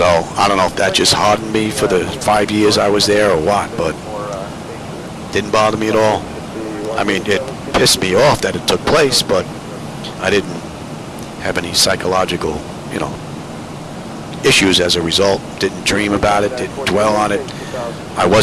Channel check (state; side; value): identical; both; correlation 1.00